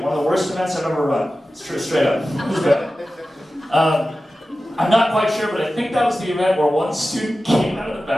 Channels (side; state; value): both; normal; correlation 0.94